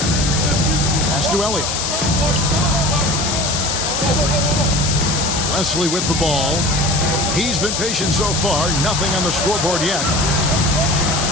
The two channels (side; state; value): left; noise; hiss, 1 dB below the sound